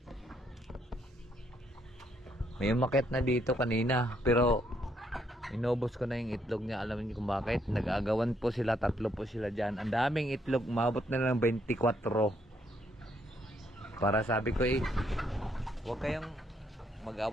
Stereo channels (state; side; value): normal; both; correlation 0.72